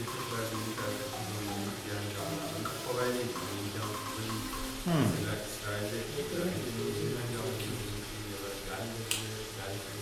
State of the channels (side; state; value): both; identical; correlation 1.00